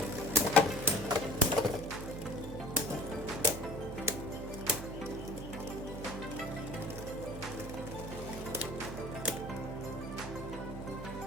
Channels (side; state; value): right; noise; hum, 9 dB below the sound